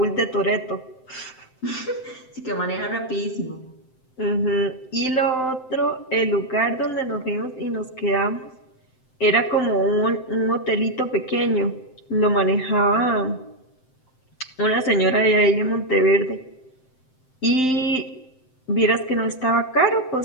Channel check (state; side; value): late; right; 7.7 ms